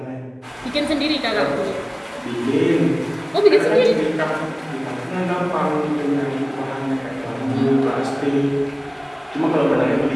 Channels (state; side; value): identical; both; correlation 1.00